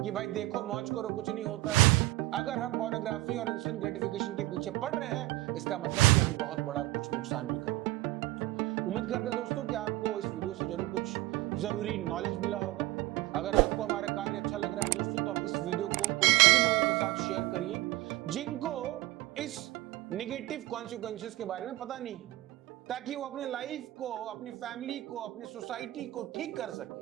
कि भाई देखो मौज करो कुछ नहीं होता है। अगर हम पोर्नोग्राफी और इंस्टेंट ग्रेटिफिकेशन के पीछे पड़ रहे हैं, इसका मतलब कि हम बहुत बड़ा कुछ नुकसान भी कर रहे हैं। उम्मीद करते हैं दोस्तों कि आपको इस वीडियो से जरूर कुछ जरूरी नॉलेज मिला होगा। अगर आपको हमारा कार्य अच्छा लग रहा है दोस्तों, तो आप इस वीडियो को उन सभी लोगों के साथ शेयर करिए जिनको इस नेगेटिव कॉन्सिक्वेंसेस के बारे में पता नहीं है, ताकि वो अपने लाइफ को, अपनी फैमिली को, अपनी सोसाइटी को ठीक कर सके,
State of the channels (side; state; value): left; quieter; 18.4 dB